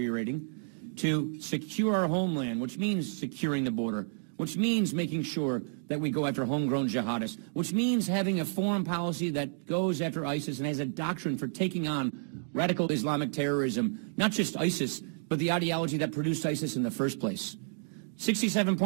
to secure our homeland, which means securing the border, which means making sure that we go after homegrown jihadists, which means having a foreign policy that goes after ISIS and has a doctrine for taking on radical Islamic terrorism, not just ISIS, but the ideology that produced ISIS in the first place.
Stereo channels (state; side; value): silent; left; digital silence